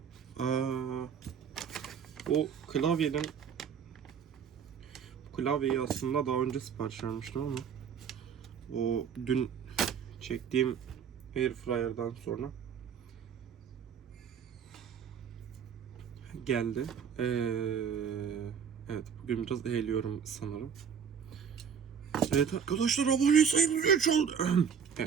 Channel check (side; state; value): left; quieter; 7.3 dB